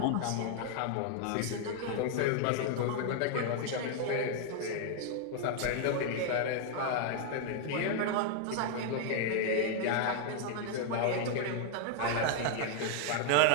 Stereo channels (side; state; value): both; different; correlation 0.00